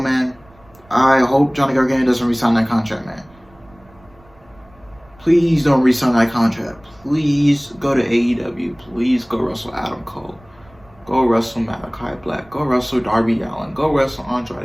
I hope Johnny Gargano doesn't re-sign that contract, man. Please don't re-sign that contract. Please go to AEW. Please go wrestle Adam Cole. Go wrestle Malachi Black. Go wrestle Darby Allin. Go wrestle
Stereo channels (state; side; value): noise; right; rumble, 28 dB below the sound